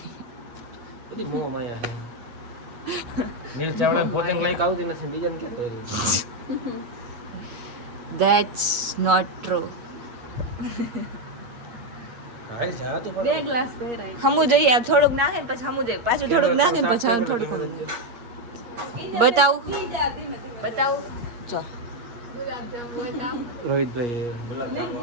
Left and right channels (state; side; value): late; left; 8.4 ms